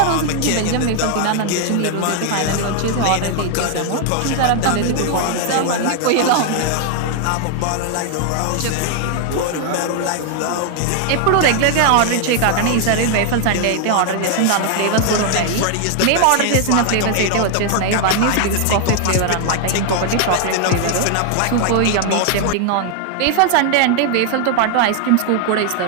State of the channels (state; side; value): different; both; correlation 0.00